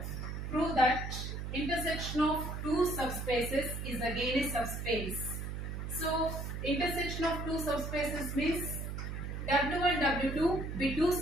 prove that intersection of two subspaces is again a subspace. So intersection of two subspaces means W1 W2 be two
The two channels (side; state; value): right; noise; hum, 5 dB below the sound